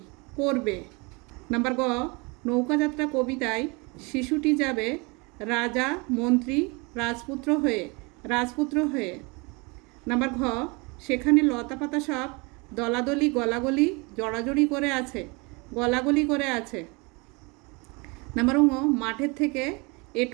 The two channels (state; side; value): quieter; left; 28.4 dB